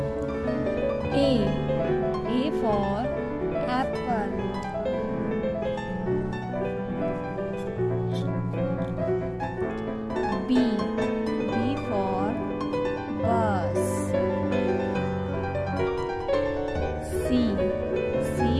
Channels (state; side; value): identical; both; correlation 1.00